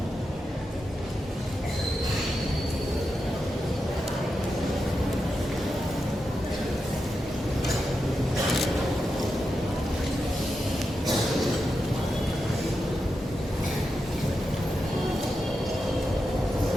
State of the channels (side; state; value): both; normal; correlation 0.88